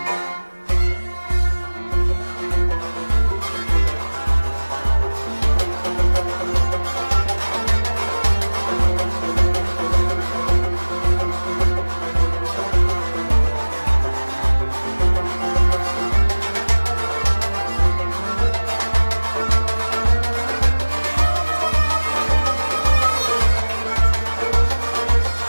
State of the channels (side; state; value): both; inverted; correlation -1.00